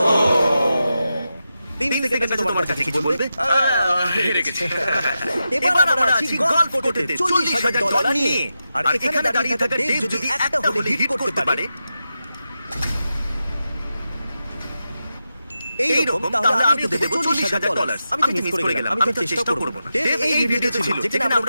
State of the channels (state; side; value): inverted; both; correlation -0.89